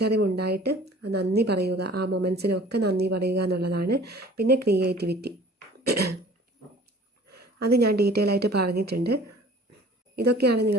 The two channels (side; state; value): both; normal; correlation 0.48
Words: നന്ദി പറയുക. ആ മൊമെൻറ്റ്സിനൊക്കെ നന്ദി പറയുക എന്നുള്ളതാണ്. പിന്നെ ക്രിയേറ്റിവിറ്റി, അത് ഞാൻ ഡീറ്റെയിൽ ആയിട്ട് പറഞ്ഞിട്ടുണ്ട്. ഇതൊക്കെയാണ്